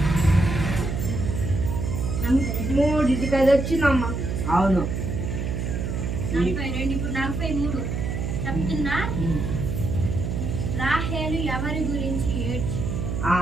3 అది వచ్చిందమ్మా. అవును. 42. ఇప్పుడు 43 చెప్తున్నా. రాహేలు ఎవరి గురించి ఏడ్చి?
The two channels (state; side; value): noise; right; hum, 2 dB below the sound